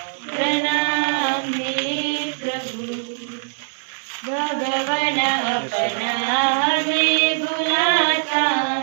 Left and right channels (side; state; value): left; silent; digital silence